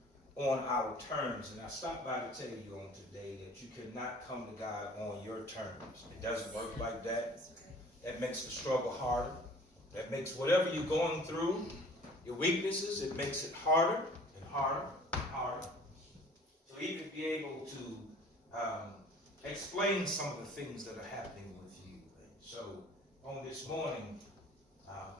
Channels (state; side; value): normal; both; correlation 0.50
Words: on our terms. And I stopped by to tell you on today that you cannot come to God on your terms. It doesn't work like that. That makes the struggle harder. That makes whatever you're going through, your weaknesses, it makes it harder and harder and harder. To even be able to explain some of the things that are happening with you. And so on this morning,